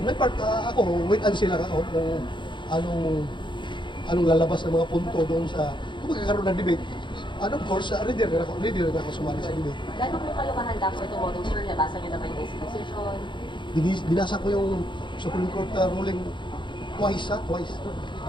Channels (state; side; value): late; right; 0.23 ms